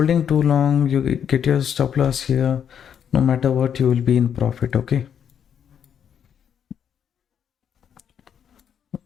too long, you get your stop loss here. No matter what, you will be in profit. Okay.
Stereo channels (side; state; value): right; quieter; 8.4 dB